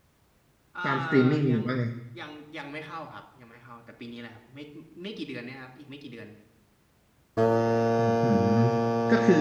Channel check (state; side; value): identical; both; correlation 1.00